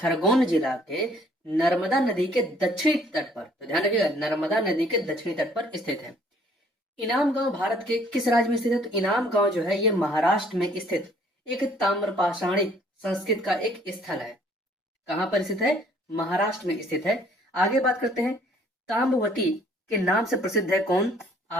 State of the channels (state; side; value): normal; both; correlation 0.60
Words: जिला के नर्मदा नदी के दक्षिणी तट पर, तो ध्यान रखिएगा, नर्मदा नदी के दक्षिणी तट पर स्थित है। इनाम गांव भारत के किस राज्य में स्थित है? तो इनाम गांव जो है ये महाराष्ट्र में स्थित एक ताम्रपाषाणिक संस्कृत का एक स्थल है। कहां पर स्थित है? महाराष्ट्र में स्थित है। आगे बात करते हैं, ताम्रवती के नाम से प्रसिद्ध है कौन?